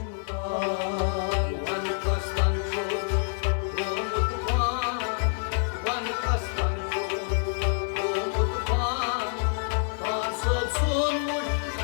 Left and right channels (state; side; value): silent; right; 60 dB below the other